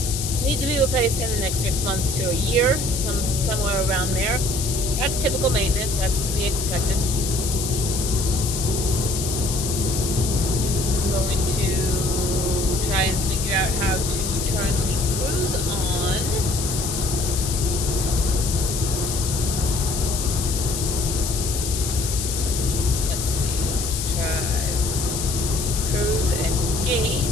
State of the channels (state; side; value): noise; left; hiss, 4 dB below the sound